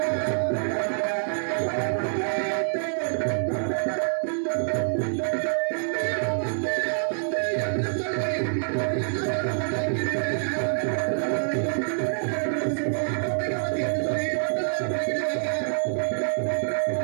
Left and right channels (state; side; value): silent; left; 61 dB below the other